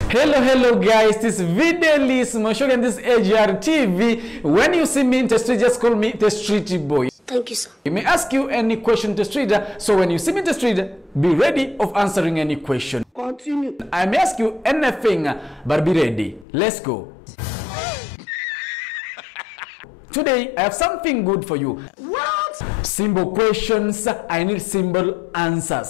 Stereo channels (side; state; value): right; drops out; at 16.4 s